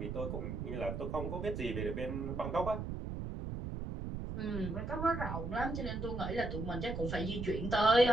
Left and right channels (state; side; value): noise; right; rumble, 4 dB below the sound